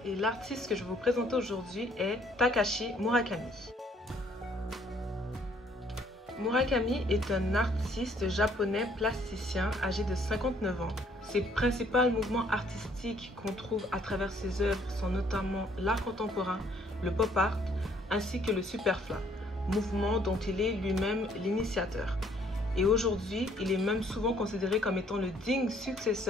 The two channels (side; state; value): both; normal; correlation 0.63